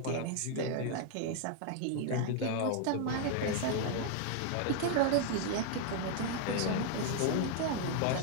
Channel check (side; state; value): both; different; correlation 0.00